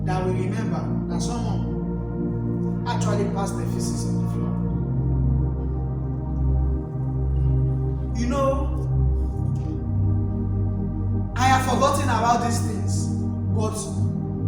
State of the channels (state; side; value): identical; both; correlation 1.00